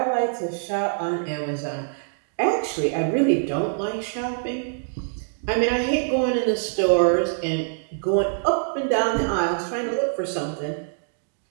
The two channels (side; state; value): left; silent; digital silence